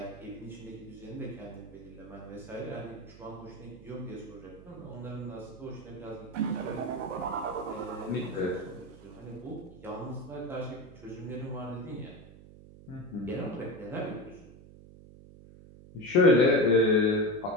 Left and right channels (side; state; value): right; noise; hum, 19 dB below the sound